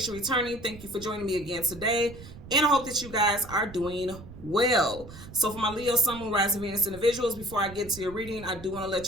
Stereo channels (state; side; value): noise; right; rumble, 15 dB below the sound